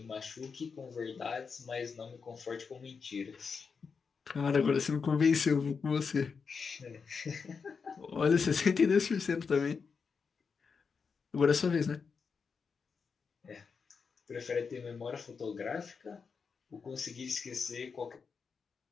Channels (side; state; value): right; quieter; 5.5 dB